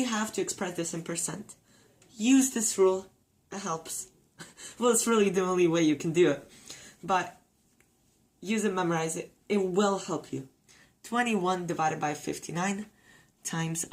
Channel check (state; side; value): identical; both; correlation 1.00